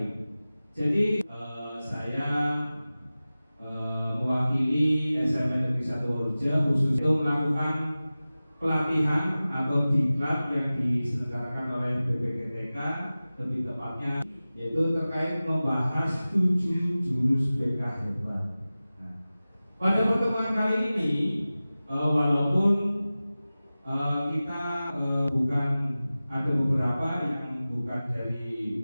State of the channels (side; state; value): both; inverted; correlation -0.97